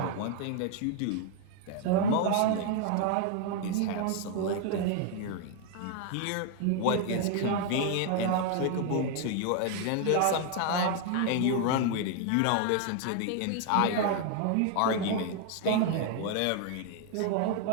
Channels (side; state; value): both; different; correlation 0.00